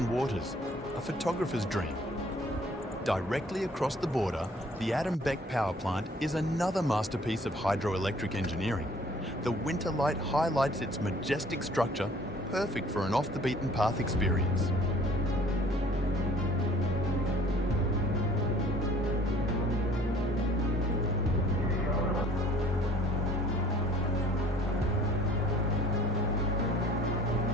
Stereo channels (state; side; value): normal; both; correlation 0.54